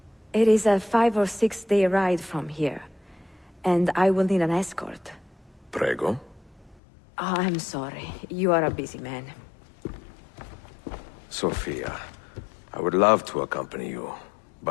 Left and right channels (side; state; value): right; drops out; at 6.8 s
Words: It is a 5 or 6 day ride from here, and I will need an escort. Prego. Oh, I'm sorry. You are a busy man. Sophia, I would love to accompany you,